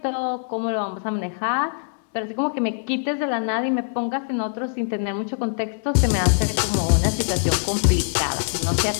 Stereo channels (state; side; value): silent; right; digital silence